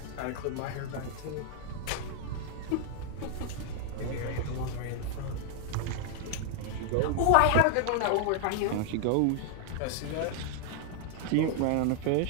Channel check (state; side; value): different; both; correlation 0.00